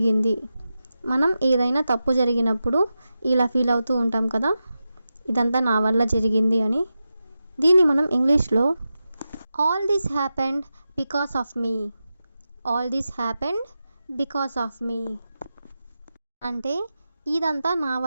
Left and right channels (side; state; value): both; inverted; correlation -0.91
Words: మనం ఏదైనా తప్పు జరిగినప్పుడు ఇలా ఫీల్ అవుతూ ఉంటాం కదా, ఇదంతా నా వల్ల జరిగింది అని. దీన్ని మనం ఇంగ్లీష్లో all this happened because of me. All this happened because of me అంటే ఇదంతా నా